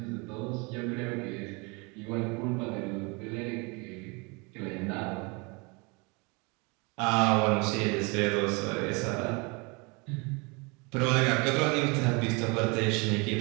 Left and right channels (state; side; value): quieter; left; 29.3 dB